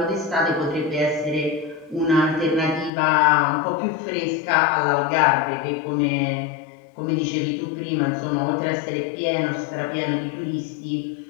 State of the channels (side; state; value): right; drops out; at 2.9 s